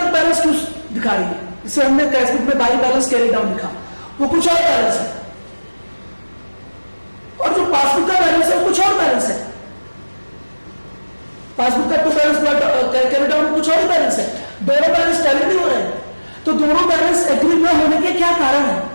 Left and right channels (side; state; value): both; inverted; correlation -1.00